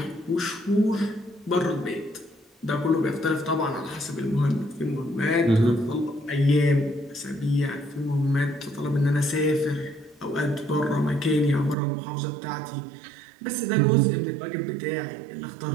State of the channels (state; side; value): drops out; left; at 11.8 s